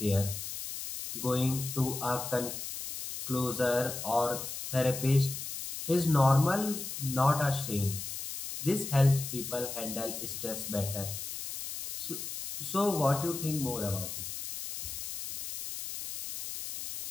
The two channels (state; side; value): noise; left; hiss, 7 dB below the sound